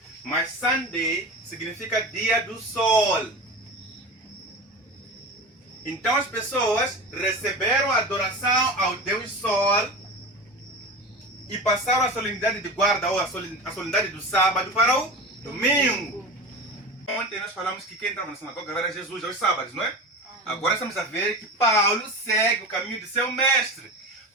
Mas Sunday significa dia do sol. Então as pessoas receberam a adoração ao Deus Sol e passaram a solenidade de guarda ou a solenidade do sábado para o domingo. Ontem nós falamos que quem entrava na sinagoga era Jesus aos sábados, não é? Agora estamos a ver que Paulo segue o caminho de seu mestre.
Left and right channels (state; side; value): normal; both; correlation 0.29